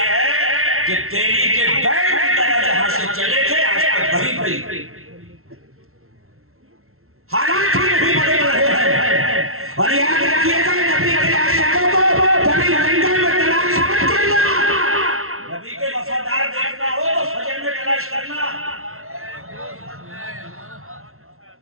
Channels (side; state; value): left; late; 0.62 ms